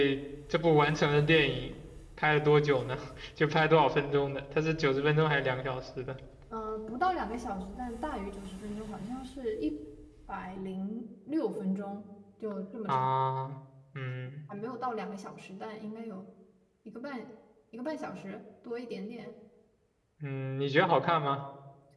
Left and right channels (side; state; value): both; identical; correlation 1.00